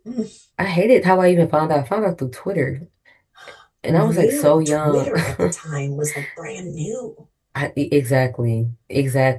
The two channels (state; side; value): identical; both; correlation 1.00